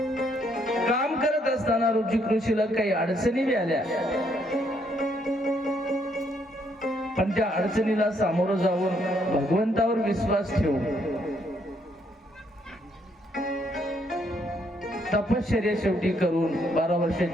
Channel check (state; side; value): normal; both; correlation 0.72